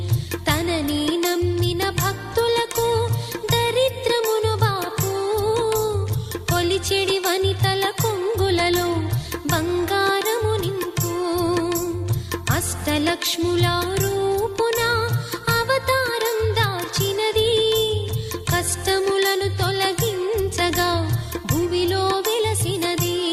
తనని నమ్మిన భక్తులకు దరిద్రమును బాపు కొలిచెడి వనితల కొంగులలో బంగారము నింపు అష్టలక్ష్ముల రూపున అవతారం దాల్చినది కష్టములను తొలగించగా భూమిలో వెలసినది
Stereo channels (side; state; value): both; identical; correlation 1.00